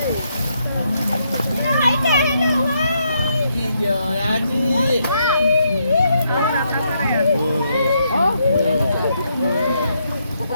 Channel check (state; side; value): inverted; both; correlation -0.77